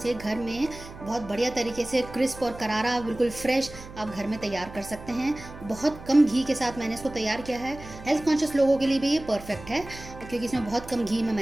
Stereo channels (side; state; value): right; noise; hum, 15 dB below the sound